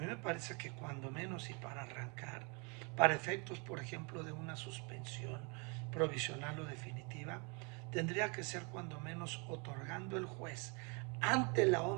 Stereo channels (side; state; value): left; quieter; 33.0 dB